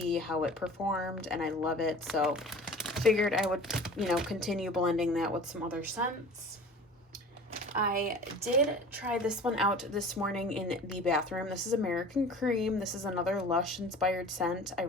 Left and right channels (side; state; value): both; normal; correlation 0.41